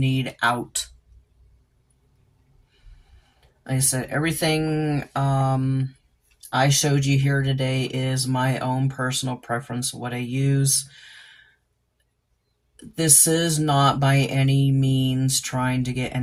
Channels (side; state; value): both; identical; correlation 1.00